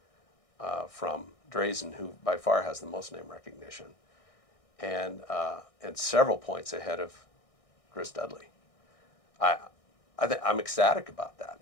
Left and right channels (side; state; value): right; late; 1.6 ms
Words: from Drazen, who by far has the most name recognition, and several points ahead of Chris Dudley. I'm ecstatic about